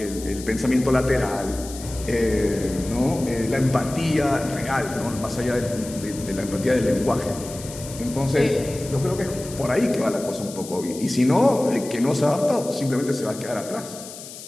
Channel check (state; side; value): noise; left; hiss, 14 dB below the sound